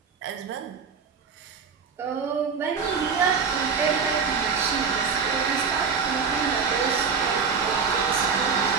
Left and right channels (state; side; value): quieter; left; 5.8 dB